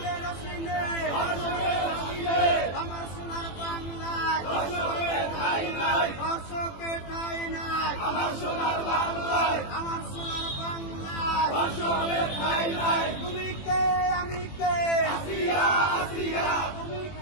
আমার সোনার বাংলায় ধর্ষকের ঠাঁই নাই, আমার সোনার বাংলায় তুমি কে আমি কে, তুমি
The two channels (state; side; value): late; right; 21 ms